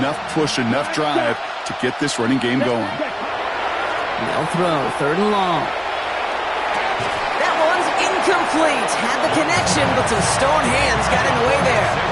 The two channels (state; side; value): identical; both; correlation 1.00